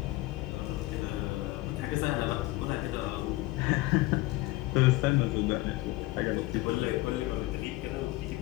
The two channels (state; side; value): quieter; right; 19.5 dB